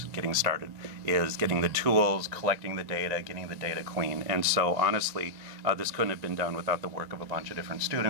getting started, is getting the tools, collecting the data, getting the data clean. And so honestly, this couldn't have been done without the work of a bunch of different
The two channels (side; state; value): left; late; 2.0 ms